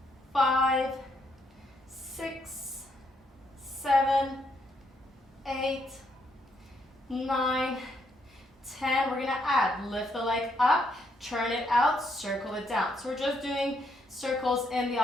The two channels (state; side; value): normal; both; correlation 0.75